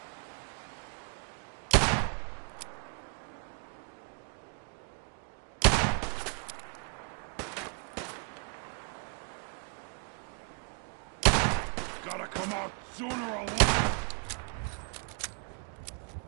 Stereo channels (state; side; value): quieter; left; 38.7 dB